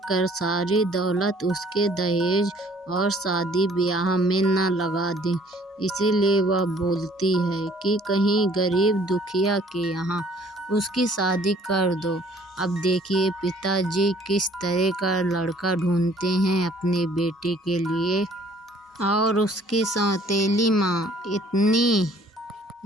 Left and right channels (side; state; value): both; normal; correlation 0.57